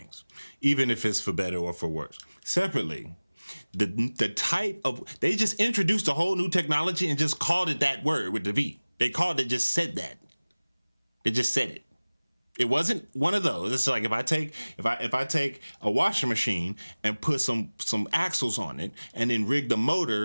even if it's for better or for worse. Separately, the type of, they just introduced a whole new technology and just called it that word with the V. They called it, just said that. They just said it. It wasn't one of those. It's like if I take a washing machine and put some axles on it and then rig the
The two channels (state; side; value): inverted; both; correlation -1.00